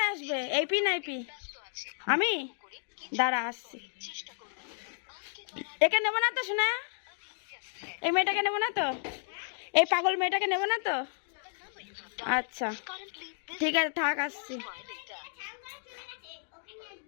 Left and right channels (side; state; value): right; silent; digital silence